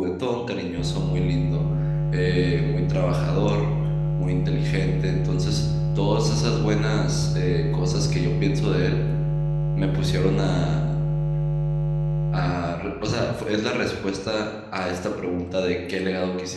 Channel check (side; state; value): both; identical; correlation 1.00